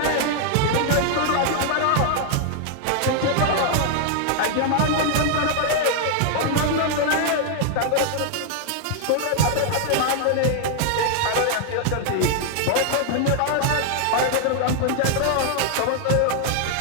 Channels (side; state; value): both; different; correlation 0.00